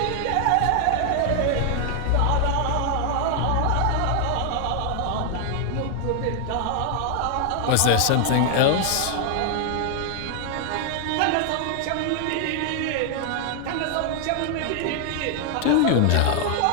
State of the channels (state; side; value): different; both; correlation 0.00